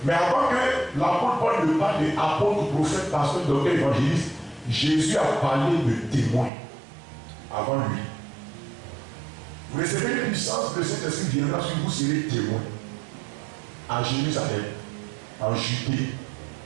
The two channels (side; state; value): left; drops out; at 6.5 s